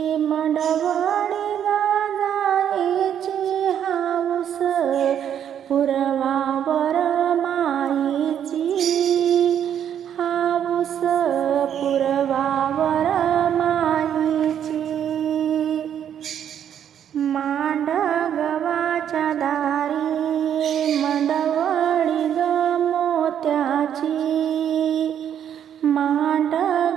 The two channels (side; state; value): left; quieter; 9.4 dB